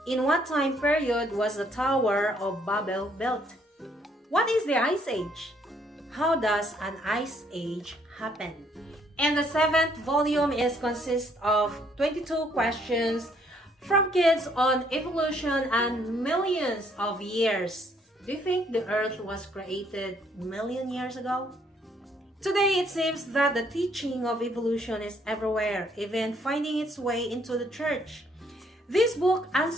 In what time period was the Tower of Babel built? What is the Ice Age? How does an Ice Age happen? And the 7th volume consists of 22 questions from kids on evolution and millions of years. Do you think the Earth was created million years ago? Today, it seems that the teaching of evolution is everywhere, even finding its way into the church. This book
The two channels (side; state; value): both; normal; correlation 0.67